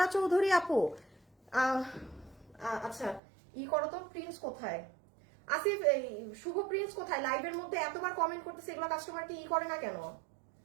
চৌধুরী আপু। আচ্ছা, করো তো, প্রিন্স কোথায়? আসিফ, এই শুভ প্রিন্স কোথায়? লাইভের মধ্যে এতবার কমেন্ট করতেছে, এগুলো কাস্টমার কি করে না কেন?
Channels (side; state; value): left; drops out; at 3.2 s